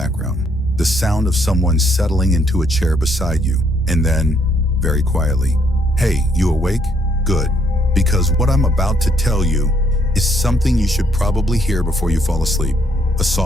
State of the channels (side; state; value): both; normal; correlation 0.70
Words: the sound of someone settling into a chair beside you, and then, very quietly, "Hey, you awake? Good. Because what I'm about to tell you is something you should probably hear before you fall asleep." A